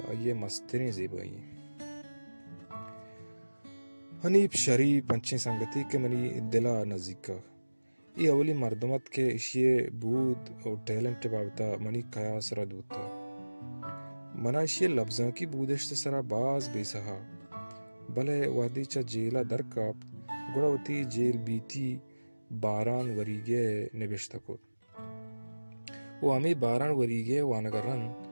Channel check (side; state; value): both; inverted; correlation -1.00